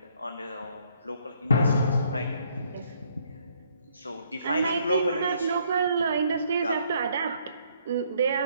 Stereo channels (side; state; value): both; inverted; correlation -0.67